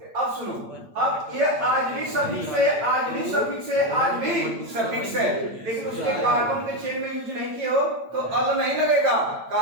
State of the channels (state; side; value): late; left; 8.8 ms